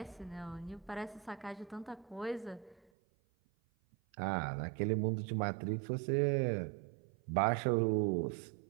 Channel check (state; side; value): drops out; left; at 2.8 s